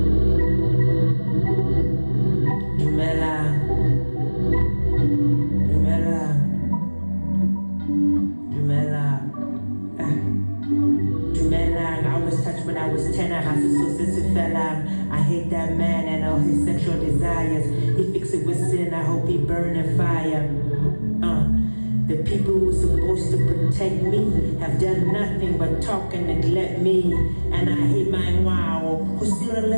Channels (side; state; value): both; inverted; correlation -1.00